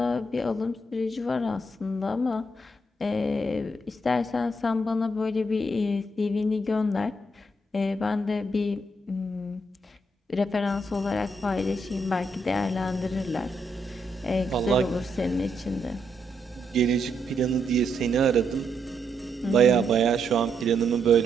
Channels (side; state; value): both; normal; correlation 0.78